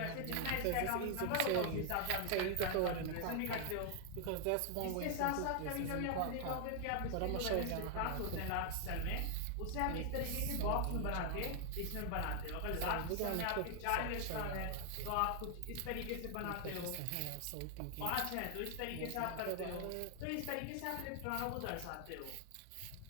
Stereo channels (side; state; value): both; different; correlation 0.00